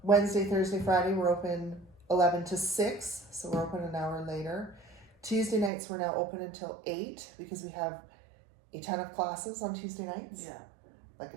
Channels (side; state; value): left; drops out; at 5.7 s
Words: Wednesday, Thursday, Friday, we're open 11 to 6, so we're open an hour later. Tuesday nights, we're now open until 8 because we have a ton of classes on Tuesday nights. Yeah. Like a